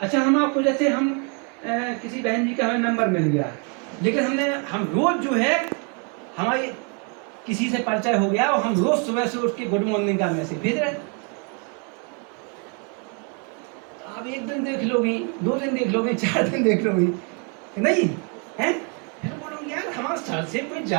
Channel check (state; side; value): quieter; left; 37.0 dB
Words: हम आपको जैसे हम किसी बहन जी का हमें नंबर मिल गया, लेकिन हम रोज जो है हमारी किसी से परिचय हो गया और हम रोज सुबह से उठ के गुड मॉर्निंग का मैसेज भेज रहे हैं। आप एक दिन देख लोगी, 2 दिन देख लोगी, 4 दिन देख लोगी, नहीं है? फिर बोलोगे यार हमारे सर से कोई